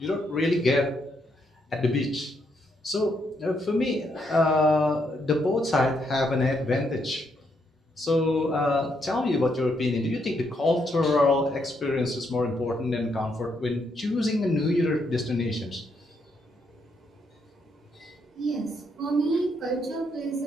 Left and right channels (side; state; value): both; normal; correlation 0.76